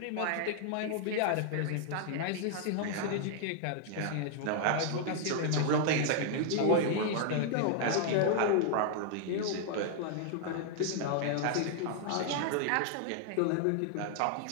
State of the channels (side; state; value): both; different; correlation 0.00